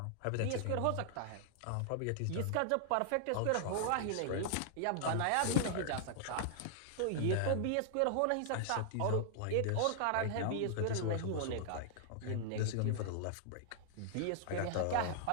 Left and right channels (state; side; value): different; both; correlation -0.01